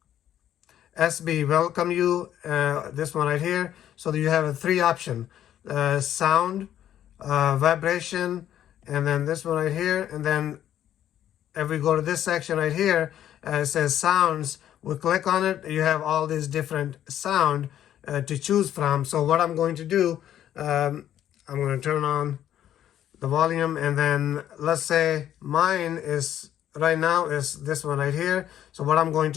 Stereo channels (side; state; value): right; quieter; 11.1 dB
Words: SBWelcomesYou, this one right here. So you have a 3 option, sound, vibration, and then this one right here. And then if we go to this section right here, it says sounds. We click on it, you have all these different sound to choose from. So what I'm going to do, I'm going to turn on the volume, and then let's say mine is right now is this one right here. So what I'm going